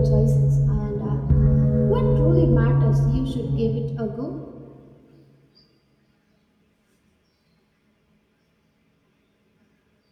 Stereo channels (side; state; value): both; identical; correlation 1.00